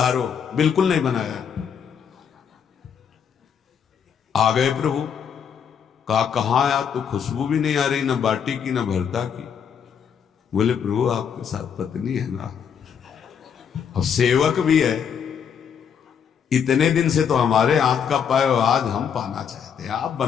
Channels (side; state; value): right; quieter; 7.6 dB